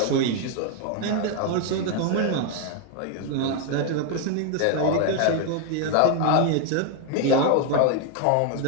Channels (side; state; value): both; different; correlation 0.01